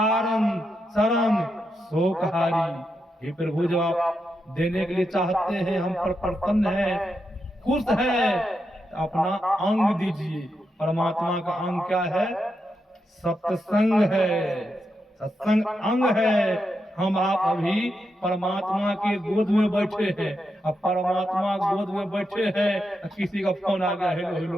शरण शोकहारी। हे प्रभु, जब आप देने के लिए चाहते हैं, हम पर प्रसन्न है, खुश है, तो अपना अंग दीजिए। परमात्मा का अंग क्या है? सत्संग है, सत्संग अंग है। हम आप अभी परमात्मा के गोद में बैठे हैं। अब परमात्मा गोद में बैठे हैं, किसी का फोन आ गया, हेलो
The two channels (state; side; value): normal; both; correlation 0.85